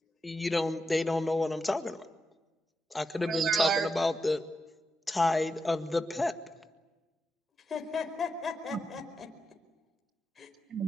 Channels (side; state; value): both; normal; correlation 0.87